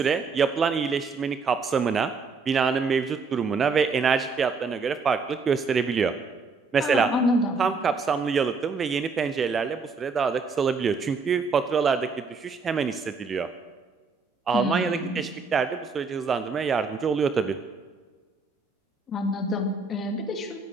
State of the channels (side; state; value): left; quieter; 4.5 dB